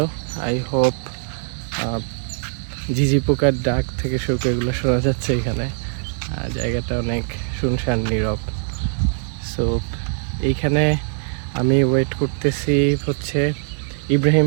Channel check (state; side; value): silent; left; 56 dB below the other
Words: আই হোপ ঝিঝি পোকার ডাক থেকে শুরু করে এগুলো শোনা যাচ্ছে এখানে। জায়গাটা অনেক শুনশান নীরব। সো এইখানে আমি ওয়েট করতেছি হচ্ছে ইব্রাহিম